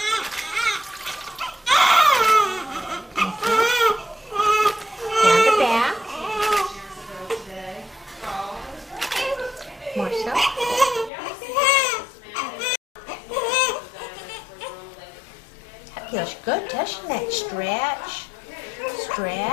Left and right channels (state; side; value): drops out; right; at 11.1 s